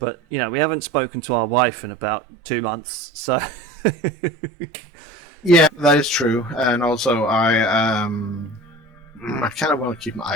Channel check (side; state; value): both; normal; correlation 0.37